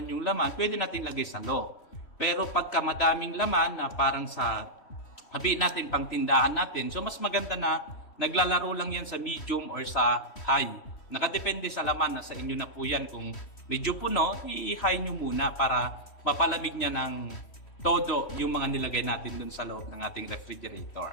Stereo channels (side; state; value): right; late; 3.1 ms